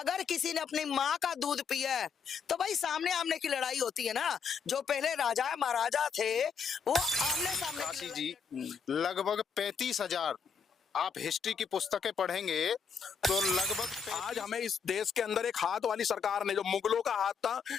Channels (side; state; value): right; quieter; 6.2 dB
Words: किसी ने अपनी माँ का दूध पिया है तो भाई सामने आमने की लड़ाई होती है ना। जो पहले राजा महाराजा थे वो आमने सामने की काशी लड़ाई जी, लड़ते लगभग 35,000 आप हिस्ट्री की पुस्तकें पढ़ेंगे तो लगभग आज हमें इस देश के अंदर एक हाथ वाली सरकार ने, जो मुगलों का हाथ था